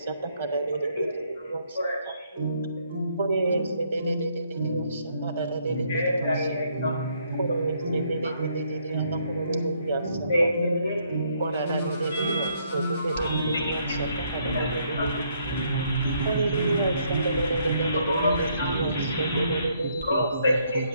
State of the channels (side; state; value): both; inverted; correlation -0.70